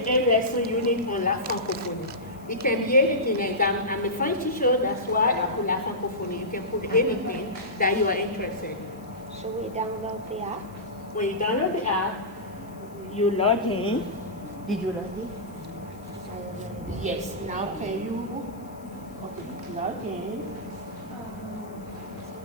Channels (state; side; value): noise; left; hiss, 27 dB below the sound